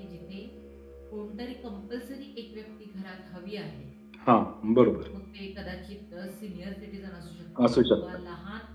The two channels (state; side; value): identical; both; correlation 1.00